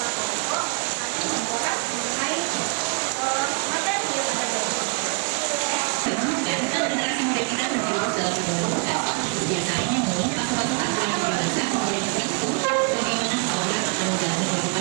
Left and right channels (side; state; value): left; quieter; 33.6 dB